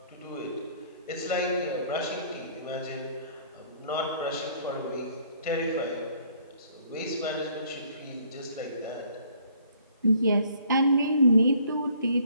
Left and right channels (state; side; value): inverted; both; correlation -0.60